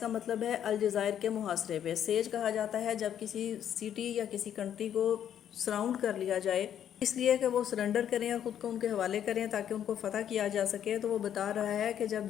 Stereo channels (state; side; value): quieter; right; 9.8 dB